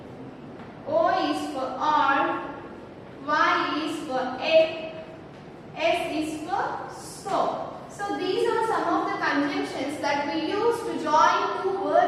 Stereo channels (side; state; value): both; identical; correlation 1.00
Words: O is for or, Y is for it, S is for so. So these are some of the conjunctions that we use to join two